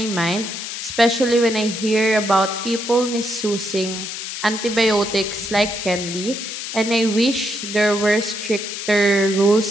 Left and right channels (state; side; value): noise; left; hiss, 7 dB below the sound